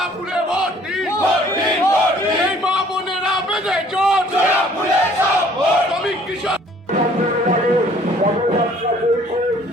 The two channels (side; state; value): both; normal; correlation 0.57